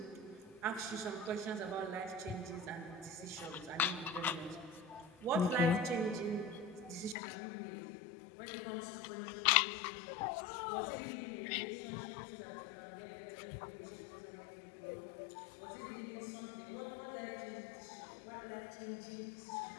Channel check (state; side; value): drops out; right; at 7.2 s